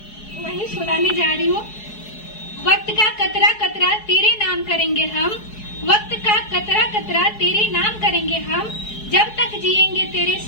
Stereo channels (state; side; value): late; right; 4.7 ms